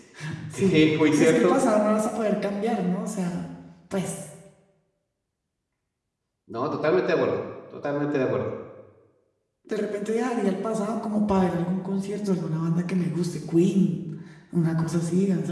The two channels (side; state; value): both; identical; correlation 1.00